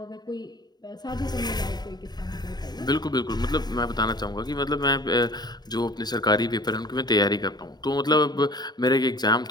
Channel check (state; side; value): late; right; 0.20 ms